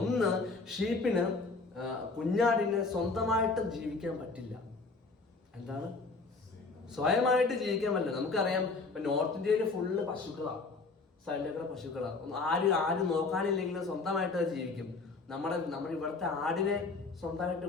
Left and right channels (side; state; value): right; quieter; 3.9 dB